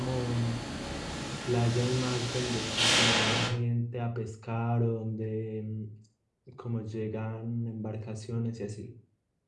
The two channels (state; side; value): identical; both; correlation 1.00